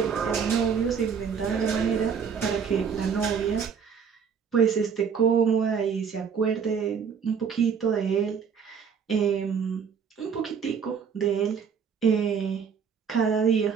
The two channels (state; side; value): quieter; left; 6.7 dB